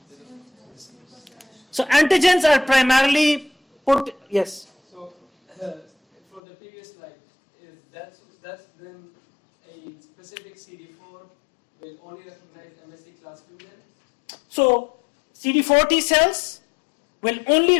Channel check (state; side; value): drops out; right; at 6.4 s